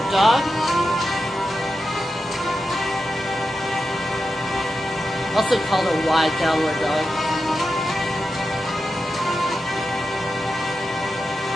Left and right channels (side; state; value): both; normal; correlation 0.90